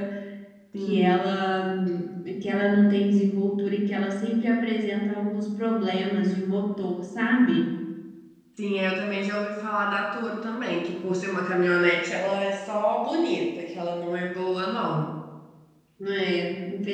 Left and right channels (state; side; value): identical; both; correlation 1.00